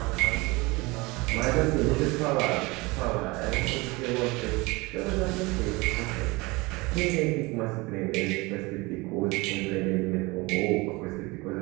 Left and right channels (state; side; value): quieter; left; 24.1 dB